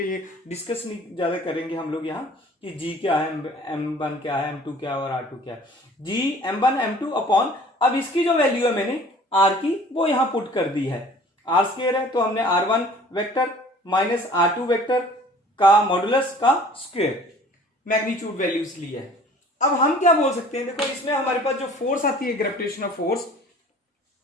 ये डिस्कस नहीं ज्यादा करेंगे हम लोग यहाँ कि g क्या है, m1 क्या है, m2 क्या है और r2 क्या है। g m1 m2 अपॉन, अब इसकी जो वैल्यू है मैंने r की वो यहां पुट कर दी है, r स्क्वायर है, तो हमने r1 vector minus r2 vector का मॉडुलस का स्क्वायर मैग्नीट्यूड वैल्यूज ली है। अब हम क्या बोल सकते हैं, देखो इसमें हमारे पास जो फोर्स आती है ग्रेविटेशनल फोर्स,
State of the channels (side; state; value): both; normal; correlation 0.49